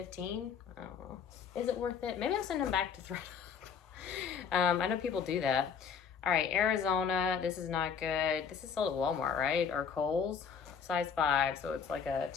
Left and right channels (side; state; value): right; quieter; 6.7 dB